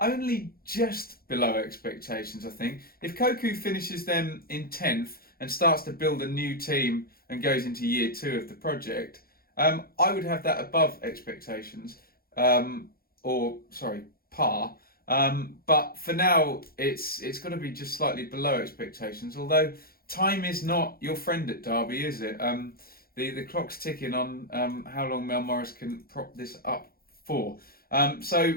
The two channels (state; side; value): late; right; 0.44 ms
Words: just below expectations, I think. If Koku finishes them in 10th and starts to build a new team and goes into year 2 of the project, I would have that above expectations, par. But for now, it's got to be just slightly below expectations. Although time is not your friend at Derby, is it? The clock's ticking on how long Mel Morris can prop this up for.